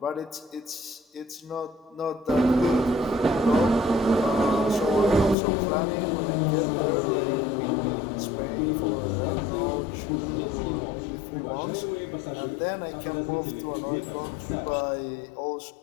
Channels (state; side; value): drops out; right; at 5.4 s